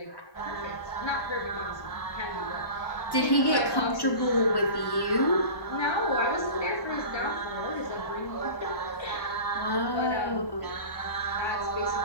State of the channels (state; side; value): late; right; 1.1 ms